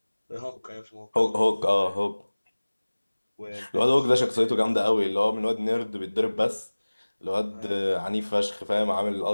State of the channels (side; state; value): both; inverted; correlation -1.00